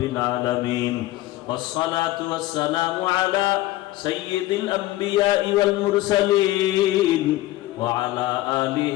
আলামিন, ওয়াসসালাতু ওয়াসসালামু আলা সাইয়্যিদিল আমবিয়া ওয়াল মুরসালিন ওয়া আলা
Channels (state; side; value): quieter; right; 16.8 dB